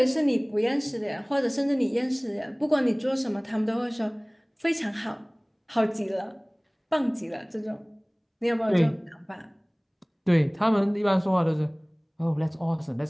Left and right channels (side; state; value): both; identical; correlation 1.00